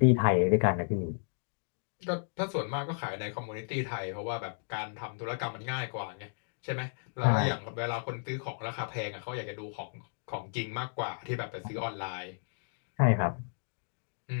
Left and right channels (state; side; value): silent; right; digital silence